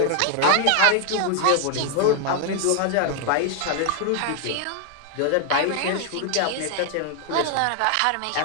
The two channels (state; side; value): different; both; correlation 0.00